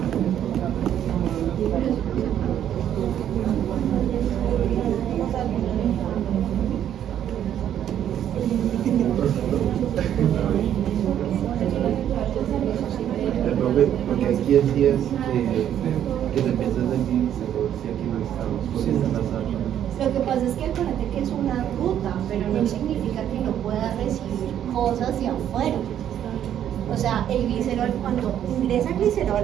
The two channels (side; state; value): left; quieter; 10.3 dB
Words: Porque aquí decías que se piensa sentir, si aquí no estamos, porque están las armas. Lo que pasa es que acuérdate que es una ruta, pero no significa que no pueda recibir cosas de afuera. O sea, el glicerol, cuando ingresa